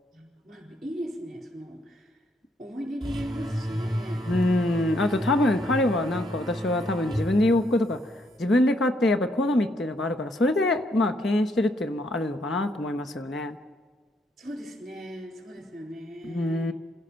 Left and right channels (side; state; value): both; normal; correlation 0.73